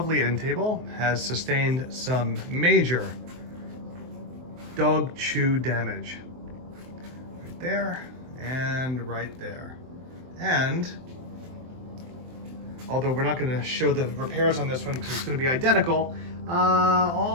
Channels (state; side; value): late; left; 23 ms